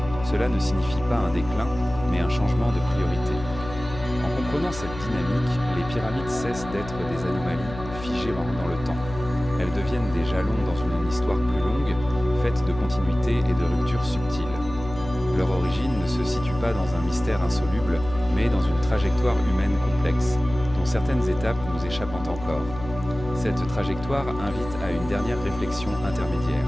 Cela ne signifie pas un déclin, mais un changement de priorité. En comprenant cette dynamique, les pyramides cessent d'être des anomalies figées dans le temps. Elles deviennent des jalons dans une histoire plus longue, faite de continuité et de ruptures subtiles. Leur origine ne se situe pas dans un mystère insoluble, mais dans une trajectoire humaine complexe, dont certaines étapes nous échappent encore. Cette trajectoire invite à une dernière réflexion intermédiaire.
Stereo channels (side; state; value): left; noise; hum, 12 dB below the sound